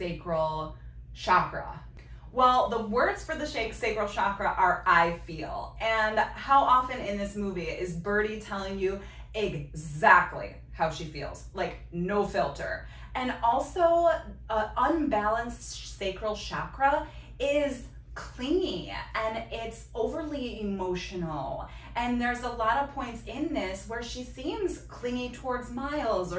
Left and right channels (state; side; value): identical; both; correlation 1.00